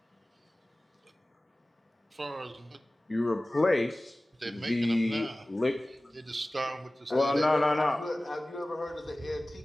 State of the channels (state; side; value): normal; both; correlation 0.98